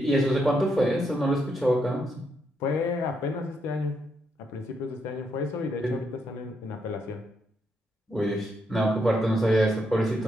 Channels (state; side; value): normal; both; correlation 0.78